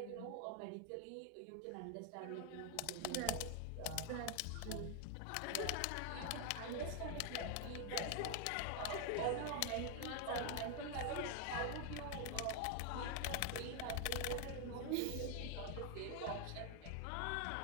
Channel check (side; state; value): both; different; correlation 0.01